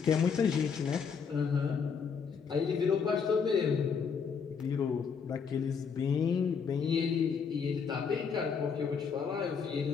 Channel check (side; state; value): right; quieter; 6.1 dB